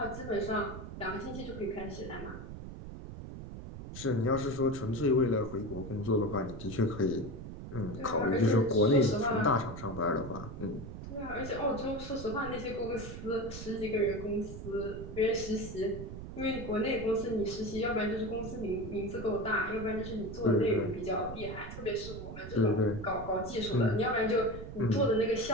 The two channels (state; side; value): noise; right; rumble, 10 dB below the sound